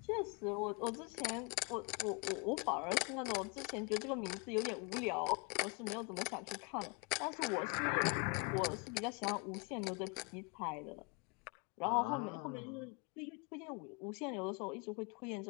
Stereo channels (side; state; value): right; quieter; 30.6 dB